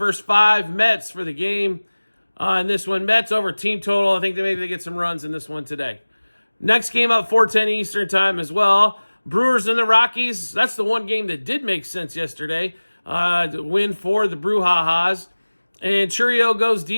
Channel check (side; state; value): both; inverted; correlation -1.00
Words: 5, Mets for the game. In this one, Mets over team total. I think maybe they get some runs in this one today. Next game up, 4:10 Eastern time as well. Brewers and the Rockies. That's the one game that did make sense yesterday. The win for the Brewhahas. And Churio goes